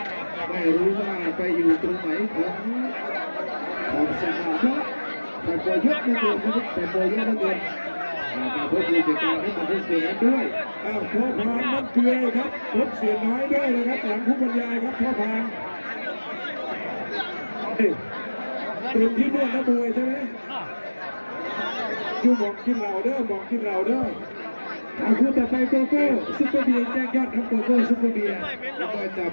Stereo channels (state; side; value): inverted; both; correlation -1.00